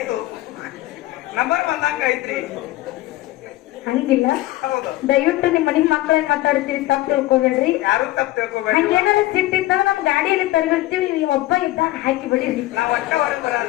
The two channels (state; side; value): quieter; right; 17.0 dB